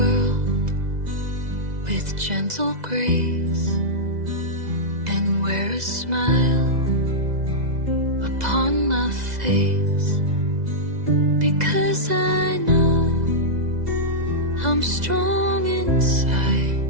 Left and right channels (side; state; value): left; late; 2.0 ms